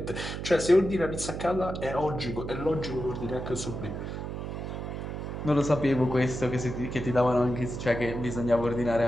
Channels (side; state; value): right; noise; hum, 6 dB below the sound